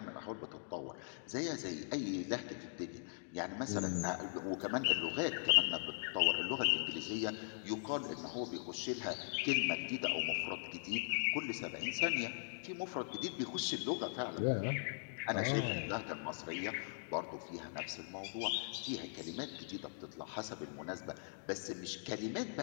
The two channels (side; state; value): right; silent; digital silence